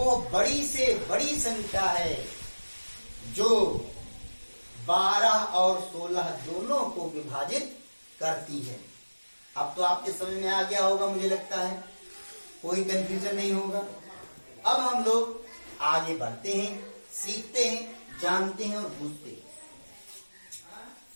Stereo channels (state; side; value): inverted; both; correlation -1.00